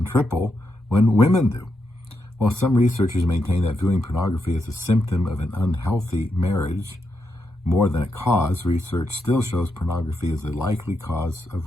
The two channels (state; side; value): normal; both; correlation 0.83